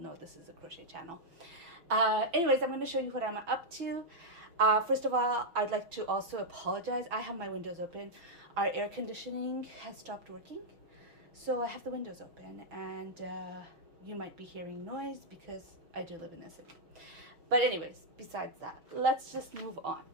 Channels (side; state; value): left; late; 6.1 ms